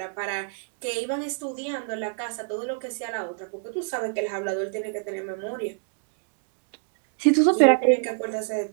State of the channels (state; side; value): silent; left; digital silence